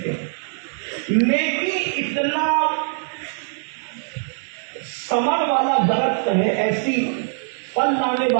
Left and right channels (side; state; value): left; silent; 62 dB below the other